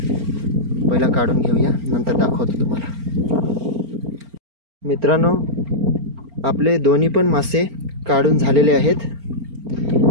पहिला काढून घेऊया, नंतर दाखवतो तुम्हाला. मित्रांनो आपले दोन्ही पण मासे काढून झालेले आहेत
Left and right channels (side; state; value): left; late; 4.4 ms